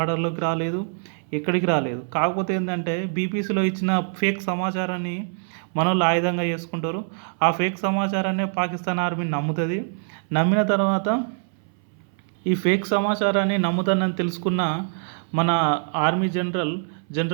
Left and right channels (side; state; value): left; silent; 62 dB below the other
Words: రాలేదు, ఎక్కడికి రాలేదు. కాకపోతే ఏంటంటే బీబీసీలో ఇచ్చిన ఫేక్ సమాచారాన్ని మనోళ్ళు ఆయుధంగా చేసుకుంటారు. ఆ ఫేక్ సమాచారాన్ని పాకిస్తాన్ ఆర్మీ నమ్ముతుంది. నమ్మిన తర్వాత ఈ ఫేక్ సమాచారాన్ని నమ్ముతానని తెలుసుకున్న మన army